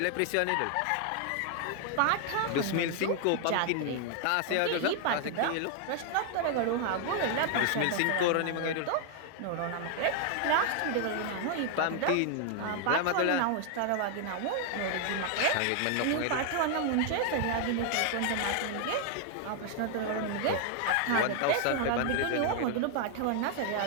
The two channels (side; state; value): both; different; correlation 0.00